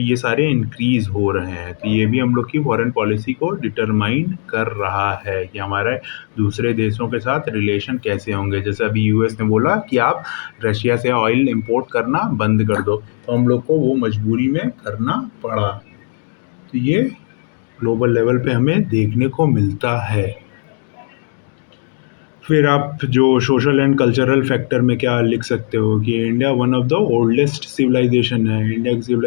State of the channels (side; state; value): right; silent; digital silence